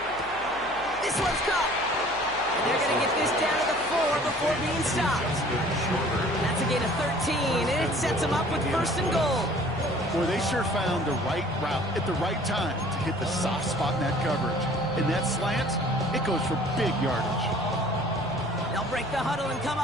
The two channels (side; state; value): left; noise; hum, 20 dB below the sound